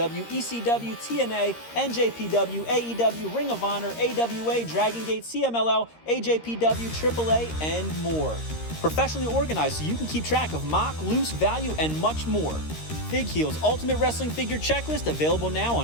ECW, TNA, NJPW, AEW, Ring of Honor, AWA, Dragon Gate, CMLL, AJPW, AAA, and more. Professionally organized so you can keep track of mock, loose, value, and much more. Fig Heel's Ultimate Wrestling Figure Checklist, available now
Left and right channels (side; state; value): right; late; 13 ms